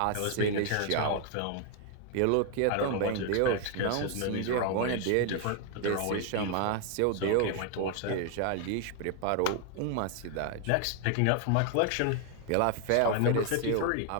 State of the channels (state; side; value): different; both; correlation 0.01